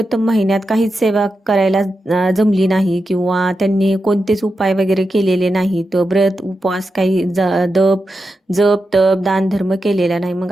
महिन्यात काहीच सेवा करायला जमली नाही किंवा त्यांनी कोणतेच उपाय वगैरे केलेले नाही, तर व्रत उपवास काही जप तप दान धर्म केलेला नाही. मग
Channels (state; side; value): normal; both; correlation 0.89